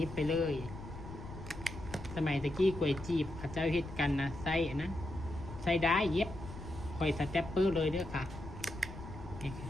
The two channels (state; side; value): noise; left; rumble, 12 dB below the sound